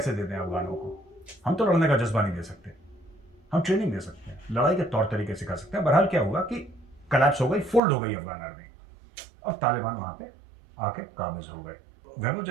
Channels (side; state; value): left; drops out; at 7.8 s